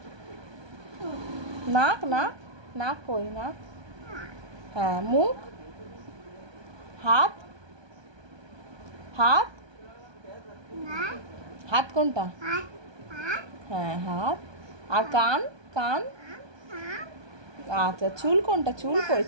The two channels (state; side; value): late; left; 1.2 ms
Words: নাক নাক নাক কই? নাক। হ্যাঁ, মুখ? হাত? হাত? হাত কোনটা? হ্যাঁ, হাত। আর কান? কান? আচ্ছা, চুল কোনটা? চুল কই?